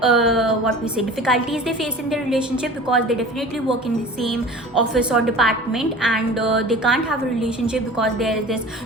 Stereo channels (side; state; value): both; normal; correlation 0.40